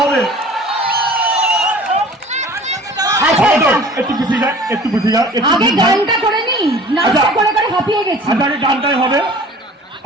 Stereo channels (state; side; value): normal; both; correlation 0.46